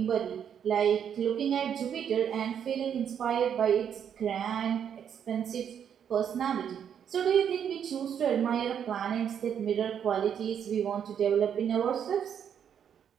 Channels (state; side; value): quieter; left; 8.4 dB